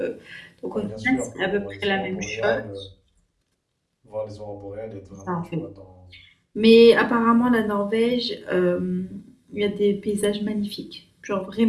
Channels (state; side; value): identical; both; correlation 1.00